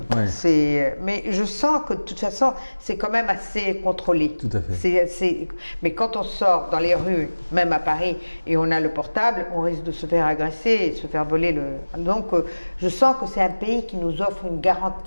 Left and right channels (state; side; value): inverted; both; correlation -1.00